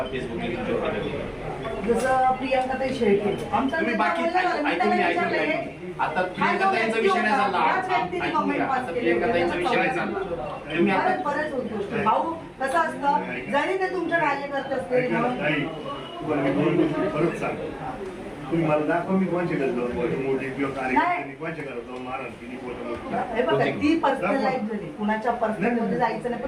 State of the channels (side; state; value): both; identical; correlation 1.00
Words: फेसबुकने तुमच्यावर टाकलं? जसं प्रियंकाताई शेळके आमचा तुम्ही नेता बाकी बोलला ना, मी ऐकून त्याला घ्या, विचारलंय, आता हा जो प्रियंकाताईंचा व्यक्ती विषय नाही होता, चालला. याच व्यक्तीने ऐकून comment घ्या, pass आता केले प्रियंकाताईंचा होते. विषय नाही चालला. तुम्ही आता बरंच बऱ्याच गोष्टी. भाऊ कसं असतं, जरी ते तुमच्या कार्यकर्ते असतील म्हणून परत सांग तुम्ही मला दाखवा मी कोणच्या घरात जाऊन मोठी किंवा कार्यकर्त्यांनी कोणच्या घरात जाऊन मारण केली फोटो हे बघा, ती पर्सनल लाईफ झाली, कुणाच्या पर्सनल मध्ये जायचं नाही,